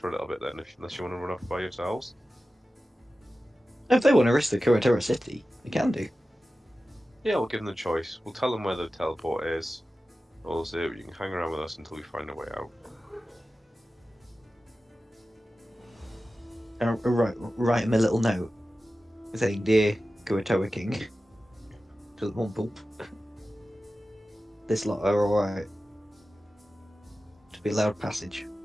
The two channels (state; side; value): normal; both; correlation 0.94